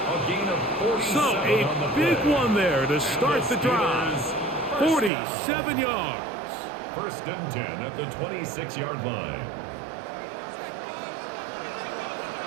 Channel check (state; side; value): drops out; left; at 5.1 s